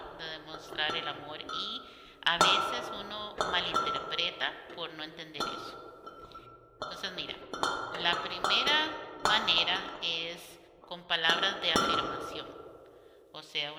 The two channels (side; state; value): both; identical; correlation 1.00